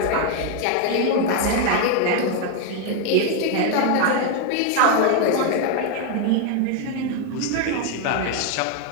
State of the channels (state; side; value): different; both; correlation 0.01